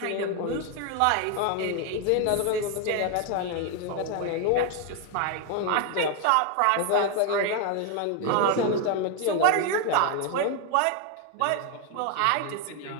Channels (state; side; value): different; both; correlation 0.01